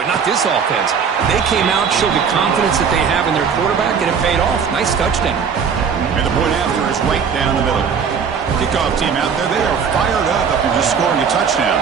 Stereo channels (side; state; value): left; quieter; 6.5 dB